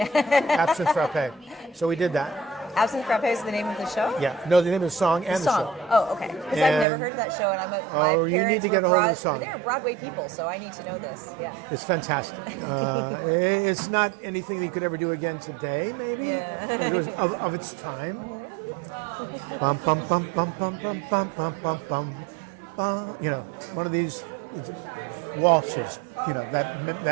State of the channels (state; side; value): drops out; left; at 6.9 s